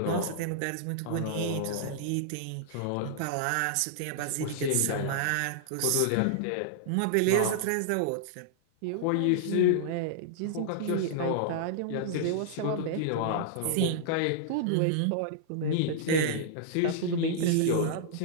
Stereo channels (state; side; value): different; both; correlation -0.01